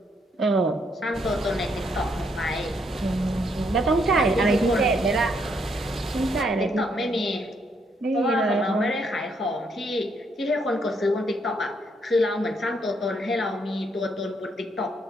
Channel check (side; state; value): both; normal; correlation 0.73